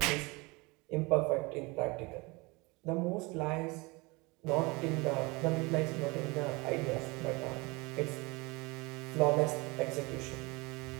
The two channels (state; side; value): quieter; left; 25.6 dB